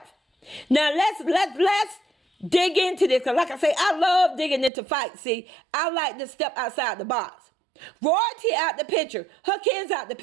Now let's dig into this. Because like I say, I love digging into fights. See, I like to step outside the box. Royalty out the picture. Her kids out the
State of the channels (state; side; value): drops out; left; at 4.7 s